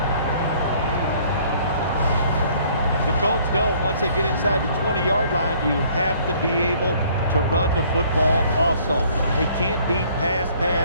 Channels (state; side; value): inverted; both; correlation -0.59